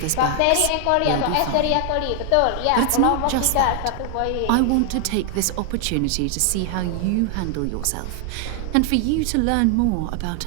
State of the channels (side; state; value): both; different; correlation 0.00